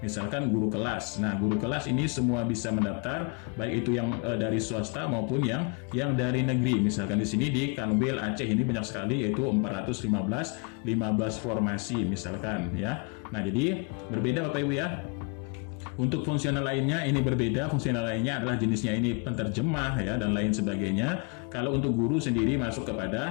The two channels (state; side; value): quieter; right; 33.8 dB